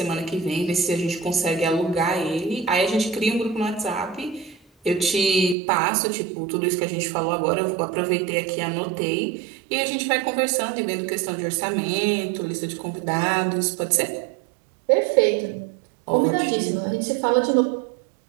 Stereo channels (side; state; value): left; drops out; at 5.6 s